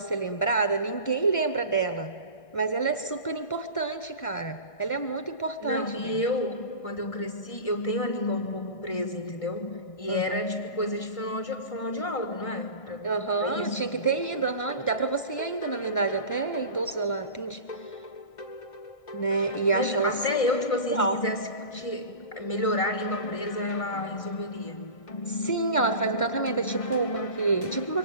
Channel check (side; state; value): right; late; 1.6 ms